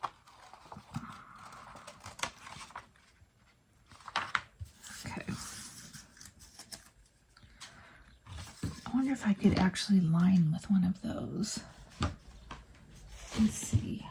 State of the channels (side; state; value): both; identical; correlation 1.00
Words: Okay. I wonder if I could actually line with one of those. Let's see.